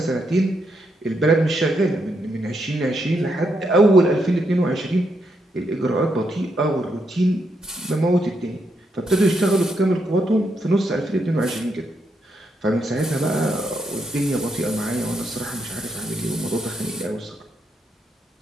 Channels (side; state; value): both; normal; correlation 0.79